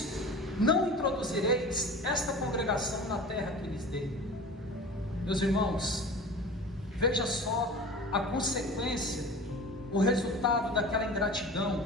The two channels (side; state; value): both; normal; correlation 0.37